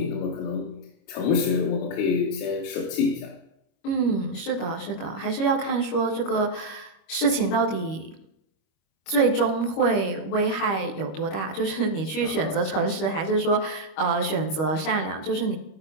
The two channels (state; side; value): late; right; 25 ms